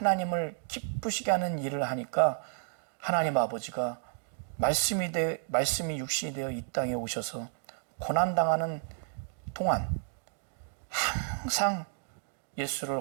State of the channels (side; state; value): left; silent; digital silence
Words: 기쁘시게 하는 일을 하니까 하나님 아버지가 말씀이 육신이 되어 이 땅에 오셔서 고난당하는 동안 항상 예수를